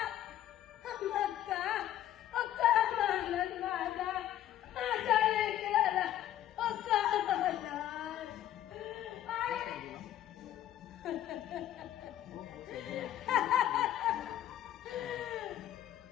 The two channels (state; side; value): quieter; right; 12.2 dB